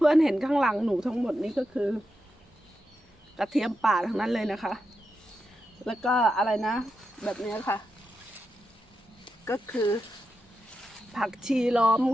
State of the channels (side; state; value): both; normal; correlation 0.87